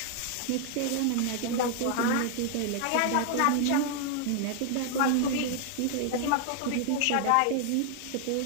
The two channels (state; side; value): different; both; correlation 0.00